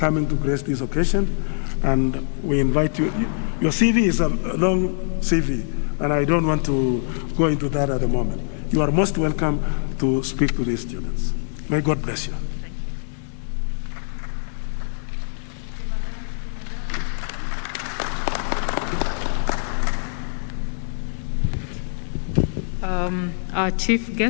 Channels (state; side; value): silent; right; digital silence